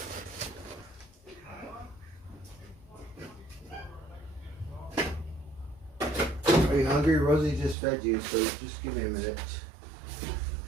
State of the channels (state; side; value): drops out; left; at 7.8 s